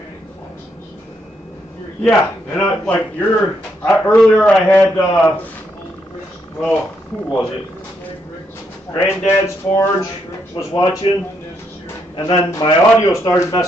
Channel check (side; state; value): both; normal; correlation 0.77